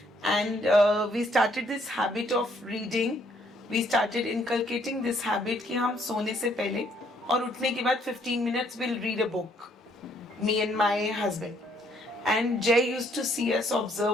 and we started this habit of reading. We started inculcating this habit कि हम सोने से पहले और उठने के बाद 15 minutes we'll read a book. Me and my husband. And Jay used to see us,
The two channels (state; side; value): normal; both; correlation 0.67